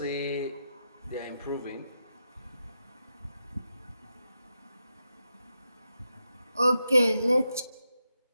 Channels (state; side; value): inverted; both; correlation -0.87